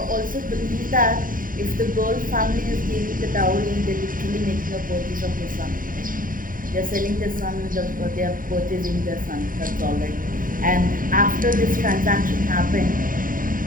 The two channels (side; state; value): left; late; 0.40 ms